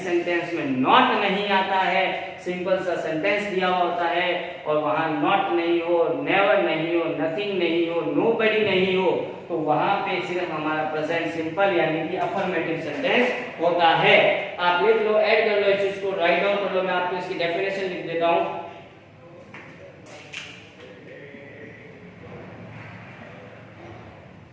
सेंटेंस में नॉट नहीं आता है, सिंपल सा सेंटेंस दिया हुआ होता है और वहां नॉट नहीं हो, नेवर नहीं हो, नथिंग नहीं हो, नोबडी नहीं हो, तो वहां पे सिर्फ हमारा प्रेजेंट सिंपल यानी कि अफर्मेटिव सेंटेंस होता है। आप लिख लो, ऐड कर लो इस चीज को, राइट डाउन कर लो, मैं आपको इसकी डेफिनेशन लिख देता हूं।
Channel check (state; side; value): identical; both; correlation 1.00